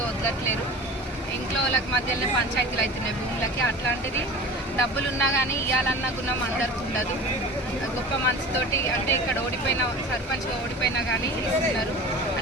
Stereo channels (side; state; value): both; normal; correlation 0.37